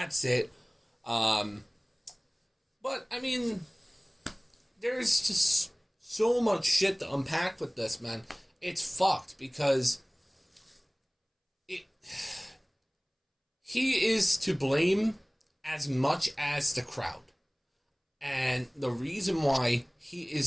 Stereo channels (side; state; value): both; identical; correlation 1.00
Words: it. But, I mean, there's just so much shit to unpack with this, man. It's fucked because he is to blame as much as the crowd. And the reason why he